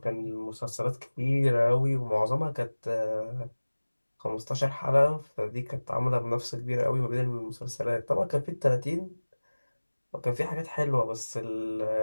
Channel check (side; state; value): both; inverted; correlation -1.00